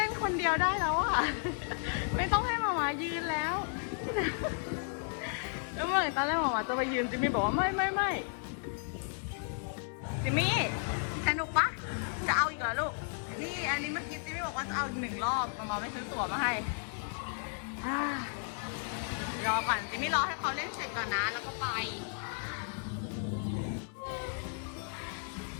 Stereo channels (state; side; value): silent; right; 55 dB below the other